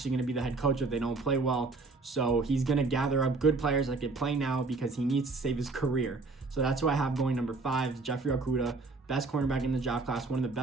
going to be the head coach if they don't play well. So he's going to gather up good players that can play now because he needs to save his career. So that's who I have going number 5, Jeffrey Okudah, best cornerback in the draft class, one of the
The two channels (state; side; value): quieter; left; 3.7 dB